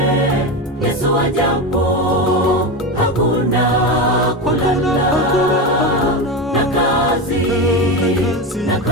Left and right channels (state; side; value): normal; both; correlation 0.18